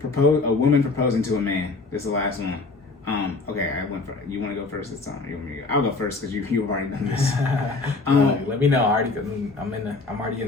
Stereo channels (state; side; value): quieter; right; 3.7 dB